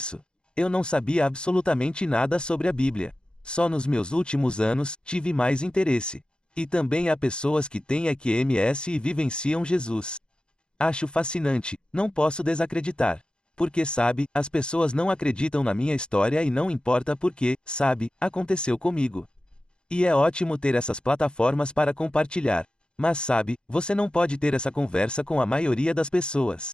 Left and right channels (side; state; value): right; late; 0.050 ms